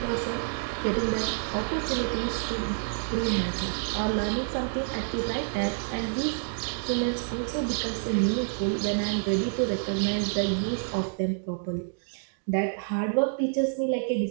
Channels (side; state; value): left; silent; digital silence